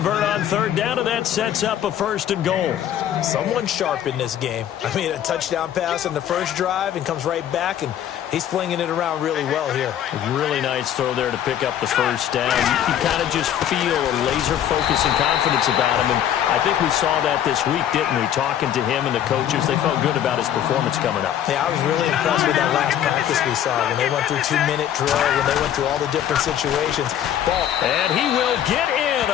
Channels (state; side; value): quieter; right; 10.5 dB